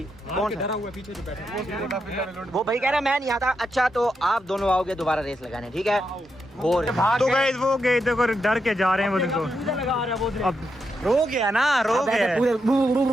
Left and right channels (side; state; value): both; normal; correlation 0.83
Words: कौन डरा हुआ है पीछे जो बैठा है? वो भाई कह रहा मैं नहीं आता। अच्छा तो आप दोनों आओगे दोबारा रेस लगाने, ठीक है? और तो गाइस वो गए देखो, डर के जा रहे हैं वो देखो। अब रो गया ना, रो गया।